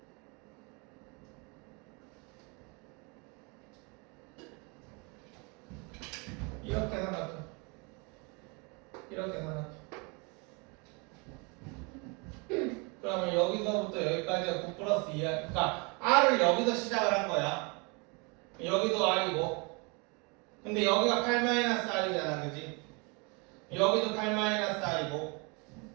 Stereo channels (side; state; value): left; quieter; 30.8 dB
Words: 이렇게 생각해. 이렇게 생각해. 그러면 여기서부터 여기까지가 9 플러스 2R. 그러니까 R을 여기서 시작을 한 거야. 여기도 R이고. 근데 여기가 8-R이잖아, 그지? 여기도 8-R이고.